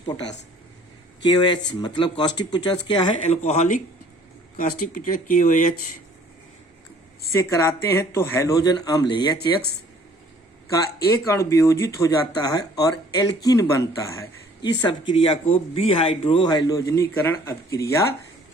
पोटास KOH, मतलब कास्टिक पोटास क्या है? एल्कोहलिक कास्टिक पोटास KOH से कराते हैं तो हैलोजन अम्ल HX का एक अणु वियोजित हो जाता है और एल्कीन बनता है। इस अपक्रिया को बिहाइड्रोहैलोजनीकरण अपक्रिया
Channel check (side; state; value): both; normal; correlation 0.56